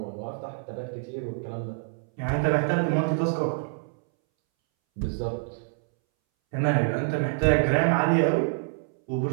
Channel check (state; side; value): silent; left; 60 dB below the other